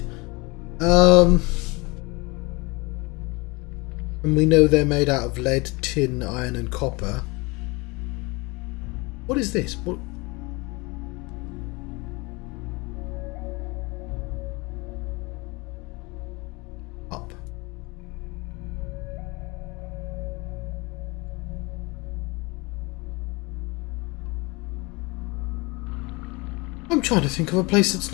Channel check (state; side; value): quieter; right; 25.9 dB